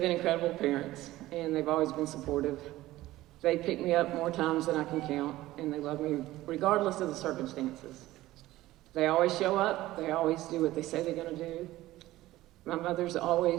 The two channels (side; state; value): left; quieter; 16.5 dB